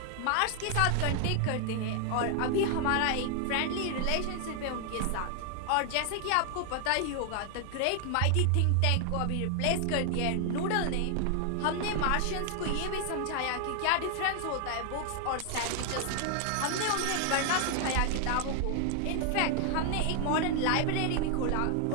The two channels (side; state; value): both; different; correlation 0.00